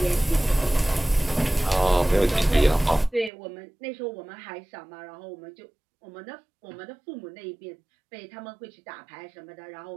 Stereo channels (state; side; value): drops out; left; at 3.3 s